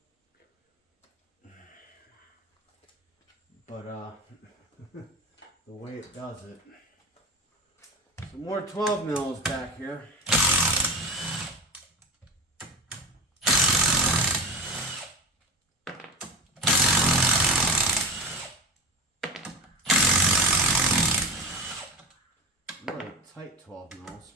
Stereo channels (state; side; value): normal; both; correlation 0.26